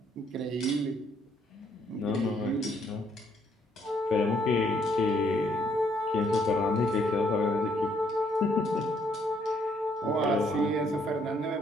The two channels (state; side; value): normal; both; correlation 0.69